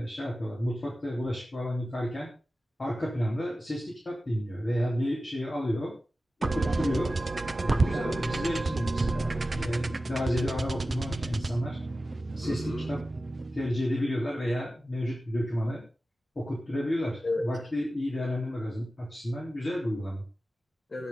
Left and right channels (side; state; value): both; normal; correlation 0.94